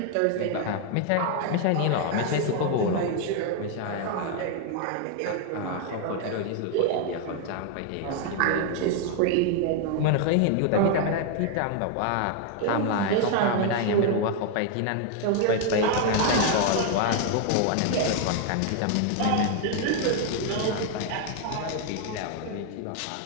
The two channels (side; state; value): both; different; correlation 0.00